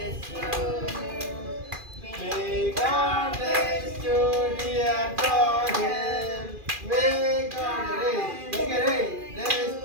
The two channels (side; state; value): left; late; 2.4 ms